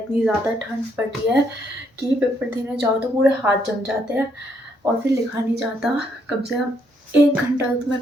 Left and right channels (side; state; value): both; normal; correlation 0.73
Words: ज़्यादा ठंड पड़ रही है कि पेपर देने जाओ तो पूरे हाथ जम जाते हैं और फिर लिखा नहीं जाता. कम से कम 1 घंटा तो मैं